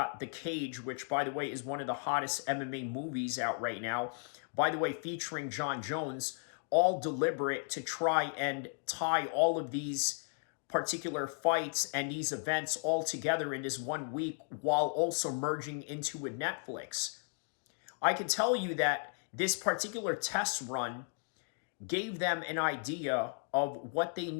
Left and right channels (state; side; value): silent; right; 54 dB below the other